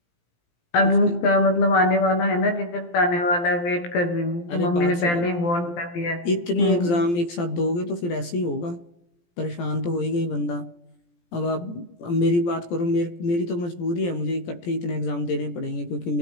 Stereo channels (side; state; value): right; late; 17 ms